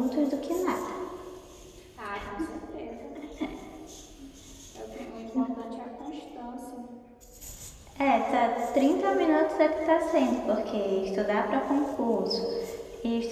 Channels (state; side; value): identical; both; correlation 1.00